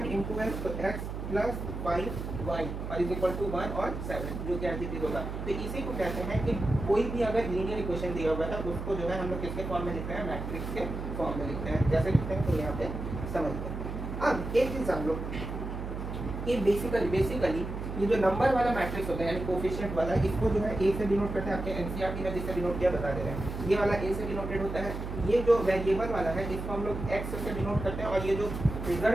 × x, तो x + 5y और = 1 और 7, जो कि एडजेक्टिव होगा। तो इसी को कहते हैं कि कोई भी अगर लीनियर इक्वेशन दिया हुआ है उसको जो है हम लोग किसके फॉर्म में लिखते हैं? मैट्रिक्स के फॉर्म में लिखते हैं। कैसे लिखते हैं तो यहाँ पे समझते हैं। अब एक चीज हम लोग कि बेसिकली ये जो नंबर वाला मैट्रिक्स होता है यानी कोफिशिएंट वाला, इसको जो है ए से डिनोट करते हैं। आपके एनसीईआरटी में जिससे डिनोट किया बता दे रहे हैं, ये वाला ए से डिनोटेड होता है। ये जो वेरिएबल वाला है इसको हम लोग एक्स से डिनोट करते हैं, और ये जो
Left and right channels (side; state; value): right; noise; hum, 6 dB below the sound